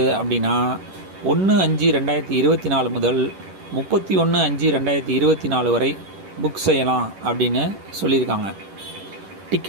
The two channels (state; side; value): late; left; 11 ms